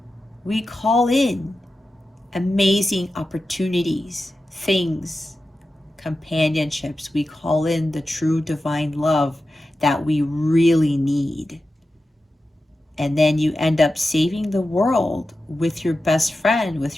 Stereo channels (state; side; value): normal; both; correlation 0.92